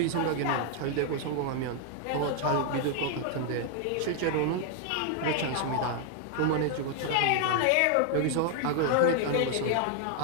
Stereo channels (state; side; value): different; both; correlation 0.00